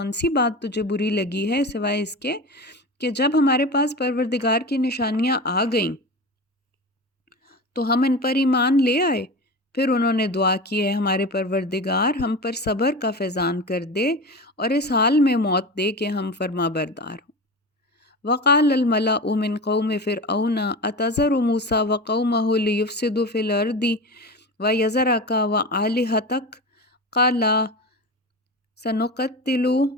سی بات تجھے بری لگی ہے سوائے اس کے کہ جب ہمارے پاس پروردگار کی نشانیاں آ گئیں تو ہم ان پر ایمان لے آئے۔ پھر انہوں نے دعا کی ہے ہمارے پروردگار ہم پر صبر کا فیضان کر دے اور اس حال میں موت دے کہ ہم فرما بردار ہوں۔ وقال الملأ من قوم فرعون أتذر موسى وقومه ليفسدوا في الأرض ويذرك وآلهتك قال سنقتل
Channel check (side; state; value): both; normal; correlation 0.28